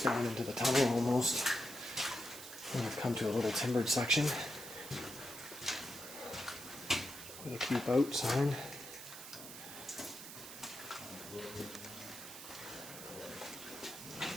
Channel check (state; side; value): noise; right; hiss, 12 dB below the sound